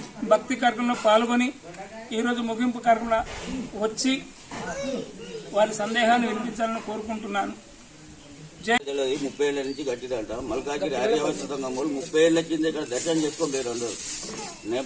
భక్తి కార్యక్రమంలో పాల్గొని ఈరోజు ముగింపు కార్యక్రమంలో వచ్చి వారి సందేహాన్ని వినిపించాలని కోరుకుంటున్నాను. 30 ఏళ్ల నుంచి కట్టిదంట. మల్కాజిరి ఆర్యవస్థంగా 30 ఏళ్ల కింద ఇక్కడ దర్శనం చేసుకోలేరు అందరూ.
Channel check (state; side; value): identical; both; correlation 1.00